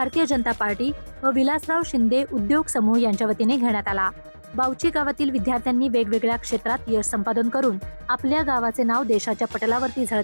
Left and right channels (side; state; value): both; inverted; correlation -1.00